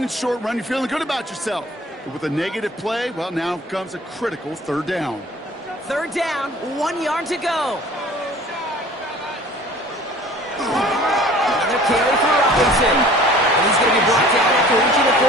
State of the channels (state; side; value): normal; both; correlation 0.48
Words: and short run, you're feeling good about yourself. But with a negative play, well, now comes a critical third down. Third down, 1 yard to go. Another carry for Robinson. And he's going to be brought down after reaching the